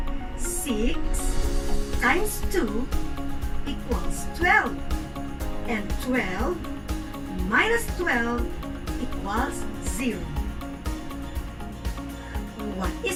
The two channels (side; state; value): both; identical; correlation 1.00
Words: 6 times 2 equals 12. And 12 minus 12 equals 0. What